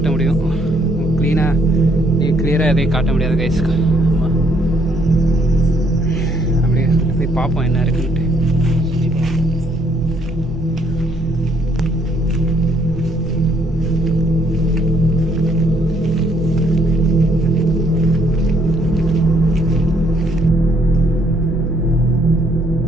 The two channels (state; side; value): normal; both; correlation 0.68